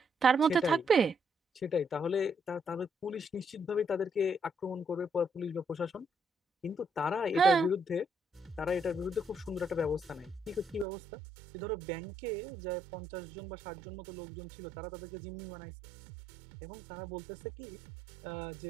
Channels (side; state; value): left; drops out; at 10.9 s